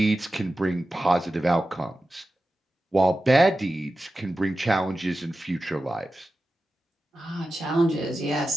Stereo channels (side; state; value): both; normal; correlation 0.93